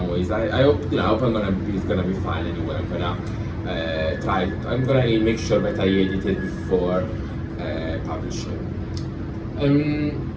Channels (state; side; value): identical; both; correlation 1.00